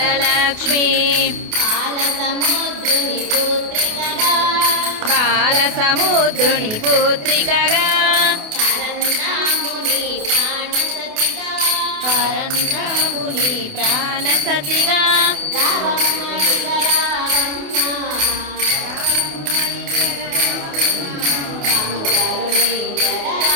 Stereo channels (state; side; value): late; left; 28 ms